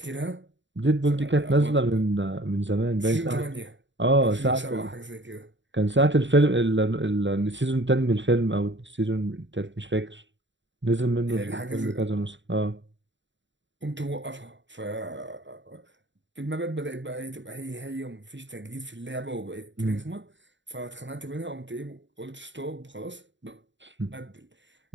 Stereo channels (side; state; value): left; late; 0.54 ms